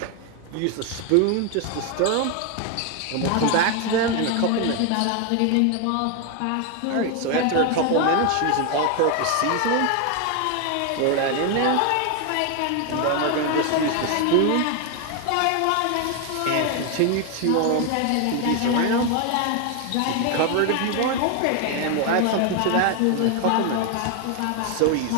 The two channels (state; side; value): different; both; correlation 0.01